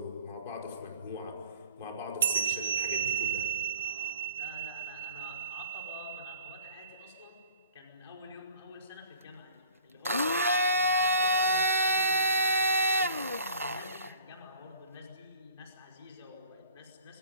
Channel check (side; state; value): both; inverted; correlation -0.52